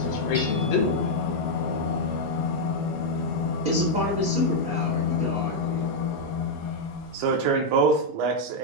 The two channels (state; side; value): normal; both; correlation -0.02